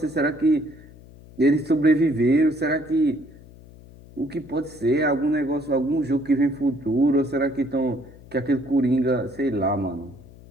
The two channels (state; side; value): noise; left; hum, 21 dB below the sound